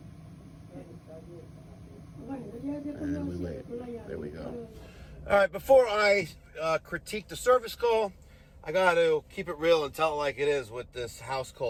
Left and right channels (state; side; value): identical; both; correlation 1.00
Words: And we wait. There we go. All right, before I critique the service call, I got to keep it real and tell it like it is with this